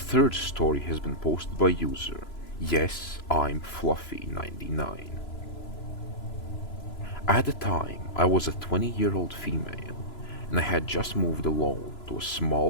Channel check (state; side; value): late; right; 3.0 ms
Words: story has been posted by user Yes, I'm Fluffy99. At the time, I was a 20-year-old female, and I had just moved alone to a small